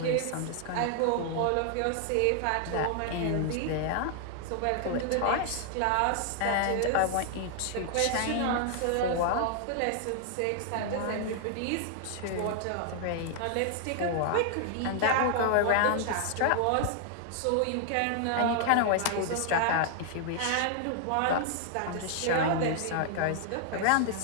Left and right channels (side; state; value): both; different; correlation 0.00